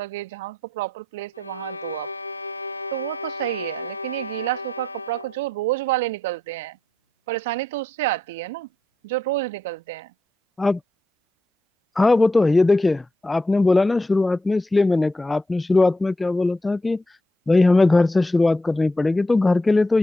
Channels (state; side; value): normal; both; correlation 0.82